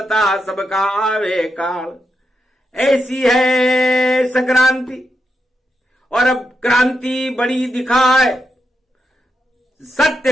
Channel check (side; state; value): both; normal; correlation 0.84